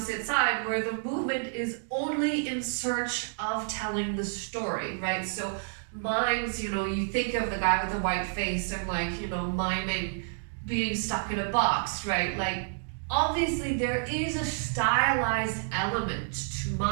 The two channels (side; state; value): left; silent; digital silence